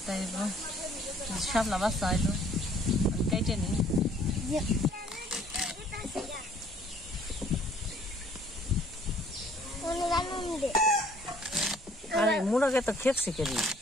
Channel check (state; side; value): normal; both; correlation 0.59